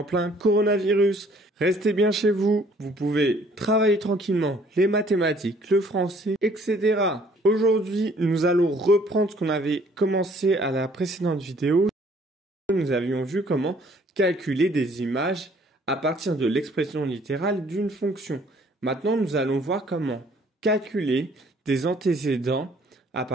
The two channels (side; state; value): both; normal; correlation 0.59